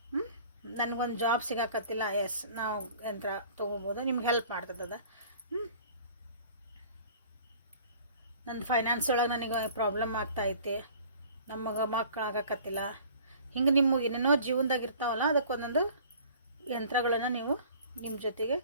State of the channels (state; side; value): inverted; both; correlation -0.49